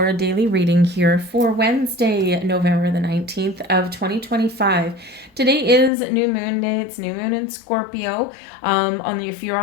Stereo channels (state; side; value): drops out; right; at 5.9 s